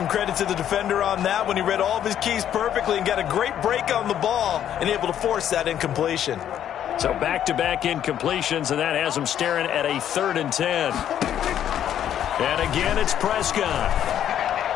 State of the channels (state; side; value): quieter; right; 10.3 dB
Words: credit to the defender on that when he read all of his keys perfectly and got a great break on the ball and able to force that incompletion. So back-to-back incompletions, and that has him staring at a 3rd and 10. And again, it's Prescott.